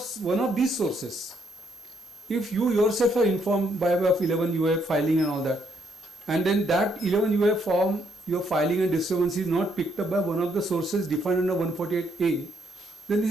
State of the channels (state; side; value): normal; both; correlation 0.72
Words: one of these sources. If you yourself are informed by way of 11 UA filing and all that, and then that 11 UA form your filing and discrepancy is not picked up by one of the sources defined under 148A, then this